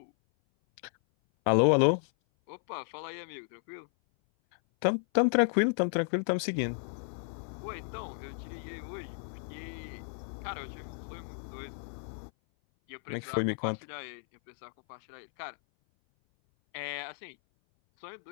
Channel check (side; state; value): right; silent; 56 dB below the other